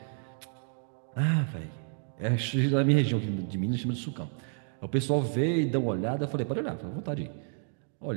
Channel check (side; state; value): left; silent; 56 dB below the other